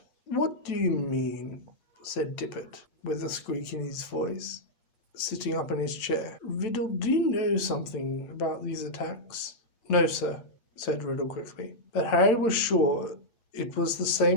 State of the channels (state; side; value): late; right; 9.0 ms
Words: what do you mean? Said Tippet, with a squeak in his voice, sitting up in his chair. Riddle, do you know something about these attacks? No, sir, said Riddle quickly. But Harry was sure it was the